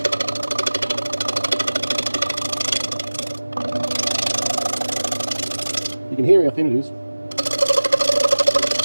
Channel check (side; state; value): both; inverted; correlation -1.00